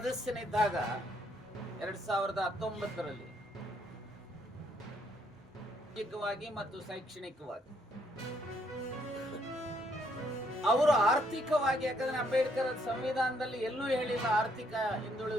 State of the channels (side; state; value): both; normal; correlation 0.70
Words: 2019ರಲ್ಲಿ ಸಾಮಾಜಿಕವಾಗಿ ಮತ್ತು ಶೈಕ್ಷಣಿಕವಾಗಿ ಅವರು ಆರ್ಥಿಕವಾಗಿ, ಯಾಕಂದ್ರೆ ಅಂಬೇಡ್ಕರ್ ಸಂವಿಧಾನದಲ್ಲಿ ಎಲ್ಲೂ ಹೇಳಿಲ್ಲ ಆರ್ಥಿಕ